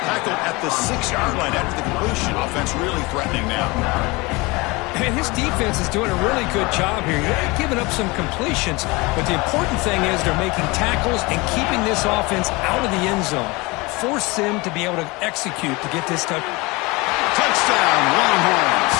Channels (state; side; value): quieter; right; 24.5 dB